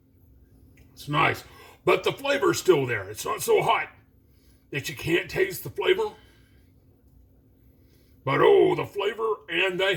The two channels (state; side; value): identical; both; correlation 1.00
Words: It's nice. But the flavor's still there. It's not so hot that you can't taste the flavor. But oh, the flavor and the